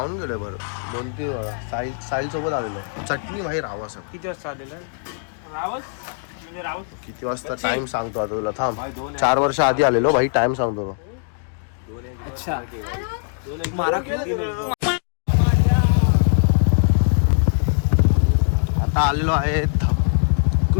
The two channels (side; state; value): right; silent; digital silence